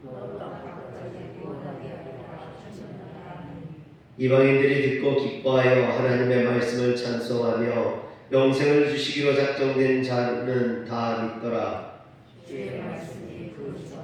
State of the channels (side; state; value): both; identical; correlation 1.00